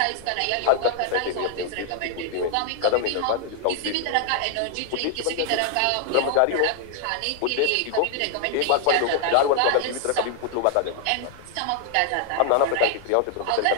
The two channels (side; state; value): both; different; correlation 0.00